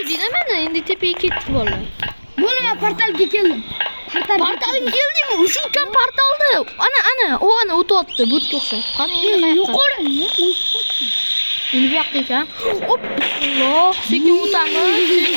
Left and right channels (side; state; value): both; inverted; correlation -1.00